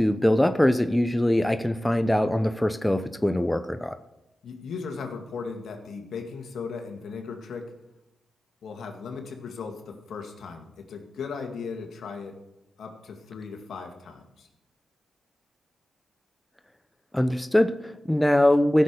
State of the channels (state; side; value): normal; both; correlation 0.97